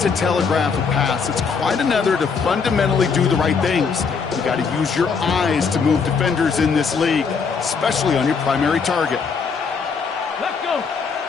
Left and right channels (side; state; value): right; quieter; 5.5 dB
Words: to telegraph a pass. It's quite another to fundamentally do the right things. You got to use your eyes to move defenders in this league, especially on your primary target. Let's go.